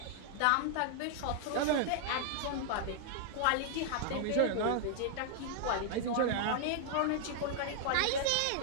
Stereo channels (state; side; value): different; both; correlation 0.00